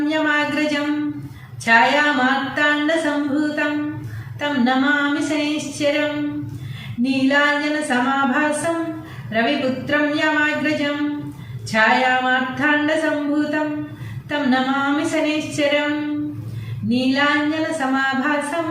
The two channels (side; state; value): both; identical; correlation 1.00